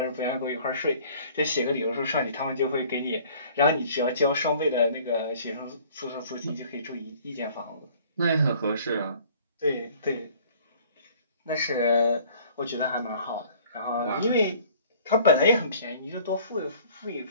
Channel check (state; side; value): inverted; both; correlation -0.53